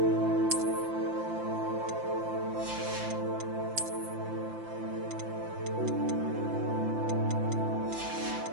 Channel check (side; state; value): left; late; 5.8 ms